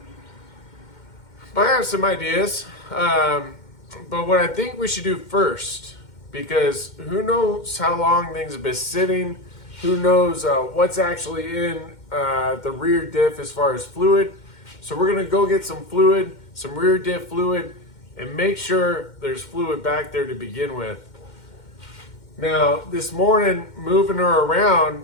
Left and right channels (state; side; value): late; right; 2.1 ms